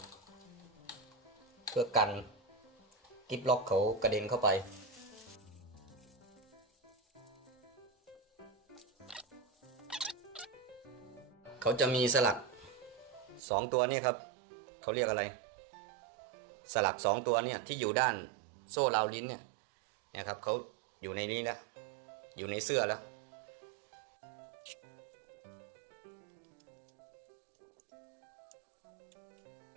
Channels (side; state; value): left; drops out; at 13.4 s